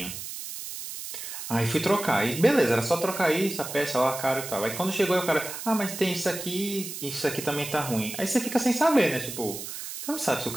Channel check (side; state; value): right; noise; hiss, 8 dB below the sound